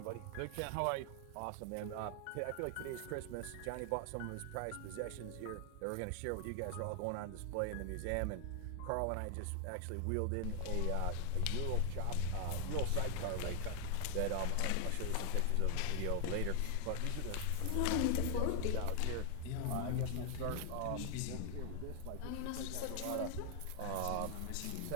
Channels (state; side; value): different; both; correlation 0.00